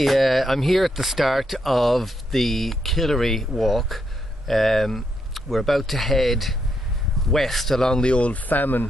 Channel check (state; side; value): normal; both; correlation 0.79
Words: I'm here at the start of the Killary walk. We're about to head west along the old famine